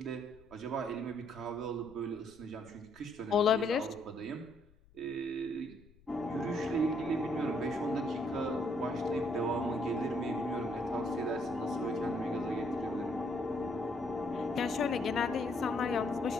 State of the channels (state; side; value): noise; left; rumble, 27 dB below the sound